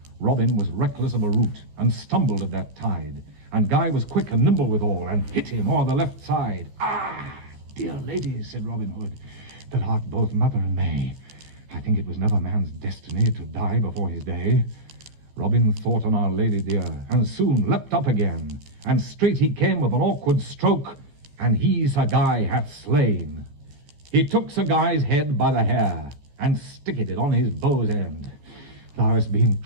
Robin was reckless of a rout, and stumbled at that tide, and Guy was quick and nimble withal, and hit him o'er the left side. Ah, dear lady, said Robin Hood, that art both mother and May, I think it was never man's destiny to die before his day. Robin thought on our lady dear, and soon leapt up again, and straight he came with an awkward stroke, and he Sir Guy hath slain. He took Sir Guy's head by the hair, and sticked it on his bow's end. Thou hast been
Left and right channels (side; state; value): left; late; 14 ms